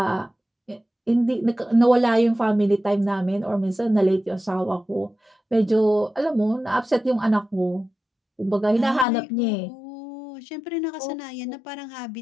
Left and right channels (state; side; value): drops out; right; at 9.1 s